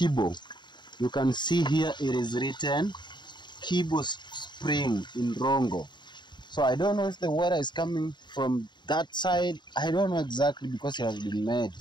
You can see here it is written Kibo Spring in Rongo. So I don't know if the water is coming from that side. I don't know exactly, because it has been made.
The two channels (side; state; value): right; late; 0.22 ms